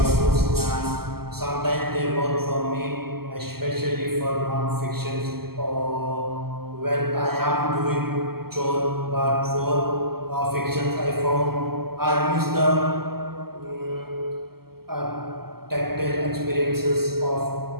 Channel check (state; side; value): late; left; 0.95 ms